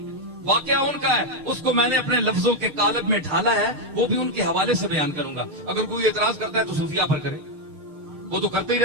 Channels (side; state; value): left; late; 6.6 ms